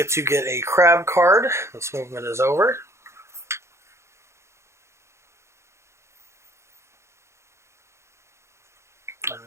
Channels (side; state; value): left; late; 0.13 ms